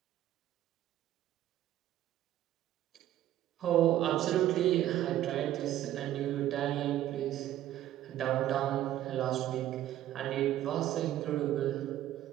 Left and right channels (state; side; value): quieter; left; 12.9 dB